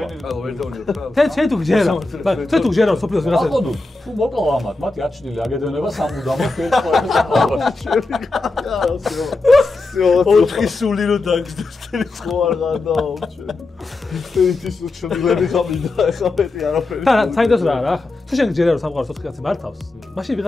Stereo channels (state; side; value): quieter; right; 3.3 dB